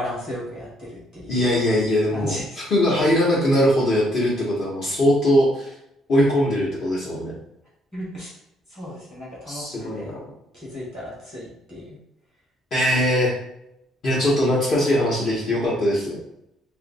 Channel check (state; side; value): normal; both; correlation 0.69